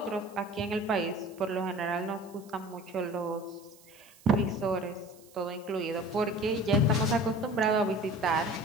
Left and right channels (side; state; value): right; noise; hiss, 25 dB below the sound